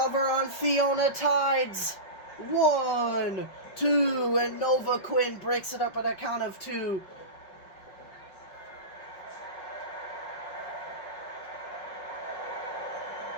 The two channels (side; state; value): right; late; 5.5 ms